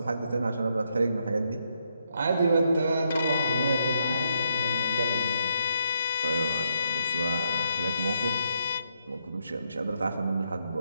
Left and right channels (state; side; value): inverted; both; correlation -0.77